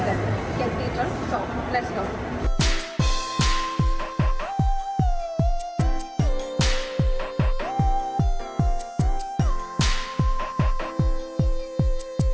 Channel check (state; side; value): identical; both; correlation 1.00